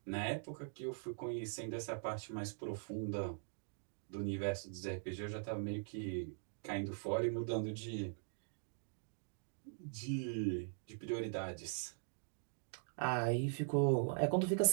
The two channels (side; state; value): left; silent; digital silence